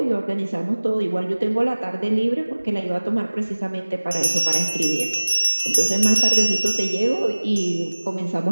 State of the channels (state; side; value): inverted; both; correlation -1.00